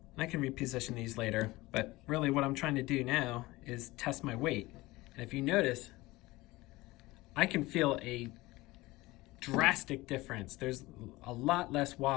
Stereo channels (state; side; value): quieter; right; 20.1 dB